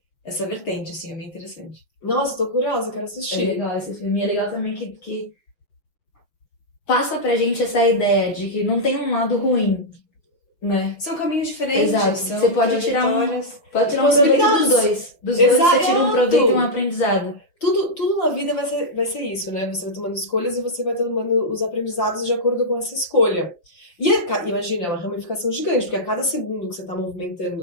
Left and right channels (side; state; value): right; late; 6.3 ms